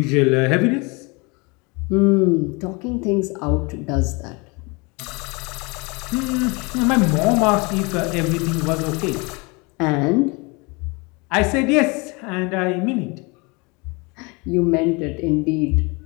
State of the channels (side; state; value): right; quieter; 28.2 dB